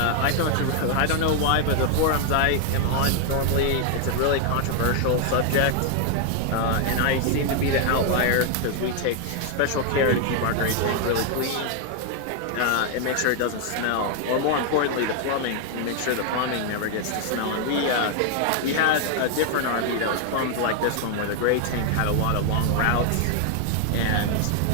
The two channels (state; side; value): different; both; correlation 0.00